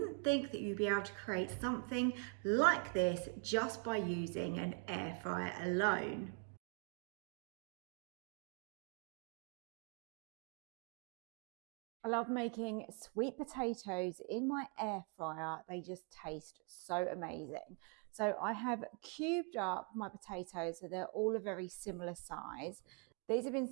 think that you'd be able to create something like this just by using an air fryer alone. I love making sweet potatoes in my air fryer. They just taste so amazing. So I have cubed up my potatoes so they're all a very similar size. These have been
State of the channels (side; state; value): left; quieter; 36.9 dB